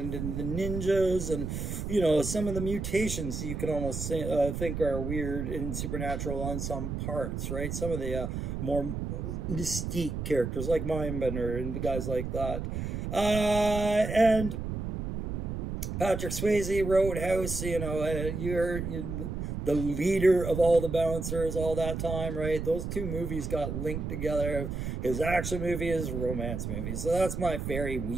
the ninjas and, you know, some of the mutations you could almost say, think are weird and supernatural on some parts, right? Some of the more mystique characters like Mindbender and the guys like that. And Patrick Swayze, Roadhouse, you know, you're the leader of all the bouncers all that time, right? Those two movies got linked together. His action movie, his romance movie. So that's my very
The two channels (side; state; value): right; noise; rumble, 4 dB below the sound